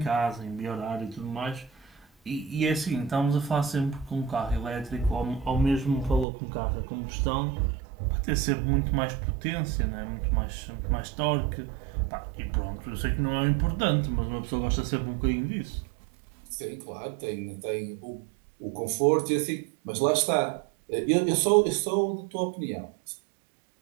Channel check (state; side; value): drops out; left; at 6.2 s